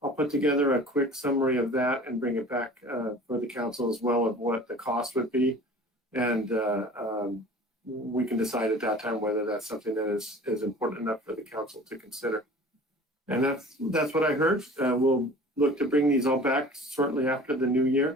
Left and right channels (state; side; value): normal; both; correlation 0.43